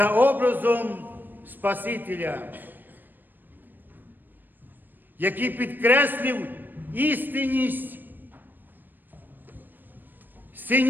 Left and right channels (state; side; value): late; left; 0.092 ms